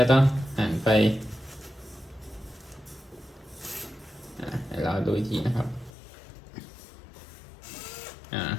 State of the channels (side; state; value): right; drops out; at 5.9 s